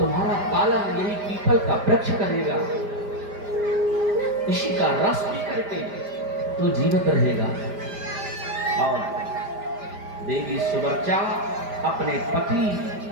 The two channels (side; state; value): left; late; 5.0 ms